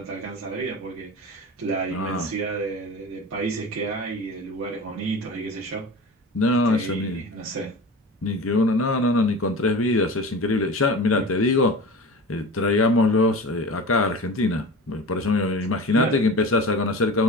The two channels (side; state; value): both; normal; correlation 0.33